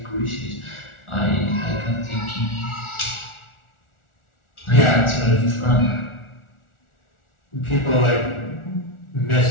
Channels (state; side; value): late; right; 1.4 ms